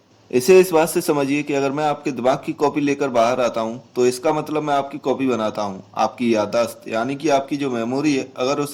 इसे इस बात से समझिए कि अगर मैं आपके दिमाग की कॉपी लेकर बाहर आता हूँ, तो इसका मतलब मैं आपकी कॉपी बनाता हूँ। आपकी याददाश्त यानी कि आपकी जो मेमोरी है, अगर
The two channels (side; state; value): both; identical; correlation 1.00